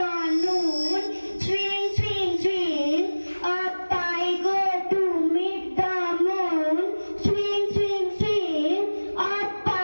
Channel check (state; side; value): inverted; both; correlation -1.00